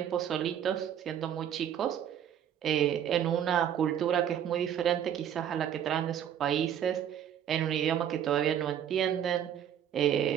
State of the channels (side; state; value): left; quieter; 9.6 dB